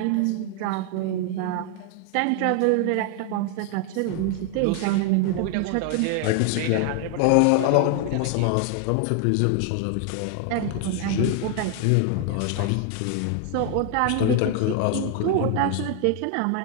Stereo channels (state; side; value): different; both; correlation 0.00